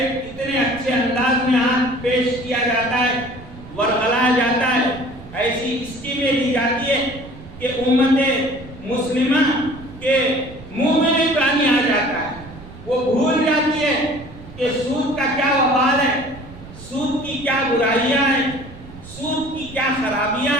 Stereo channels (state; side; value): noise; right; rumble, 17 dB below the sound